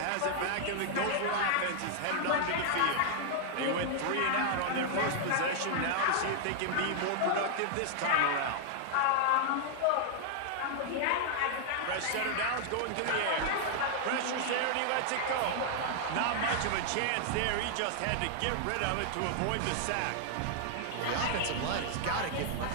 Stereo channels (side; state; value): both; different; correlation -0.01